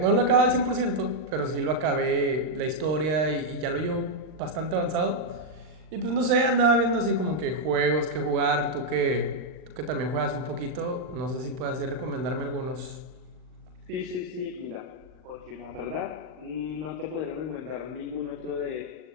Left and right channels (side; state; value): left; late; 39 ms